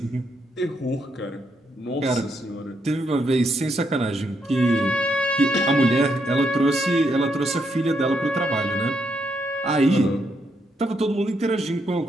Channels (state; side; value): normal; both; correlation 0.78